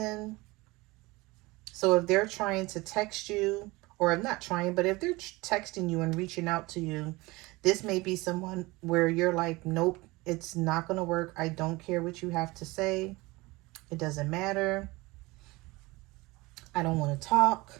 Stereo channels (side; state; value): left; quieter; 22.2 dB